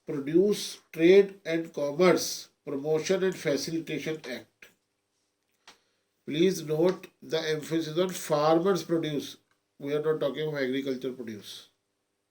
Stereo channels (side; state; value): both; identical; correlation 1.00